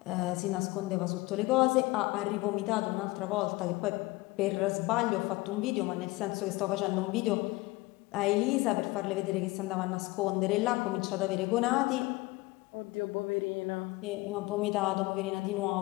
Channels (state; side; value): quieter; right; 21.5 dB